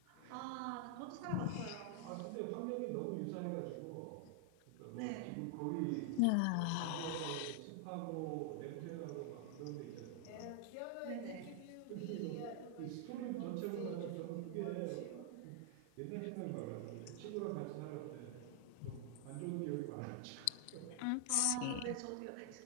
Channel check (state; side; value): different; both; correlation 0.00